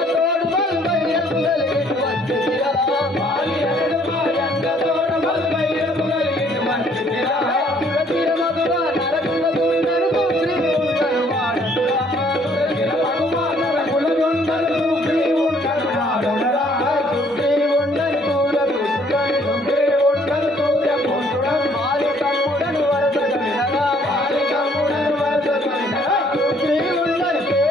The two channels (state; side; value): normal; both; correlation 0.62